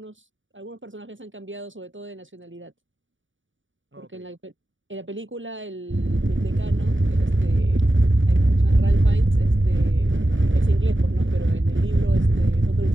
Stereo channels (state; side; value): late; left; 0.56 ms